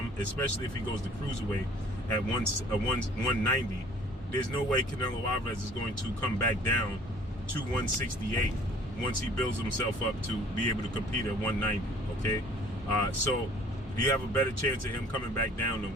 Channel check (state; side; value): normal; both; correlation 0.52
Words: especially if he goes to cruiserweight at 190. There's no way Canelo Alvarez is going to come back down to 168 once he builds himself up to be able to compete at 190, okay? So you have a better chance of him coming back down to